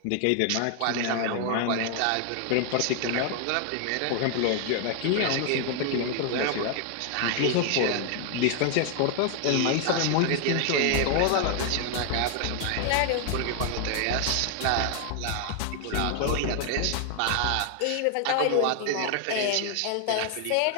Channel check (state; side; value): different; both; correlation 0.00